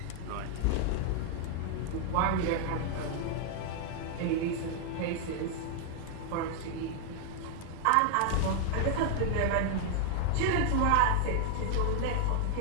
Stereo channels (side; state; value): both; different; correlation 0.00